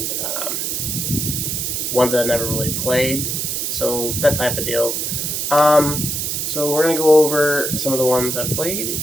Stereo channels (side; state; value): right; noise; hiss, 1 dB below the sound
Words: ones that I never really played. So that type of deal. So we're going to go over some of the ones I've played,